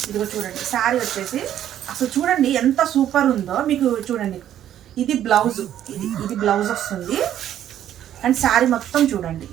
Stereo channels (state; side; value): quieter; left; 11.1 dB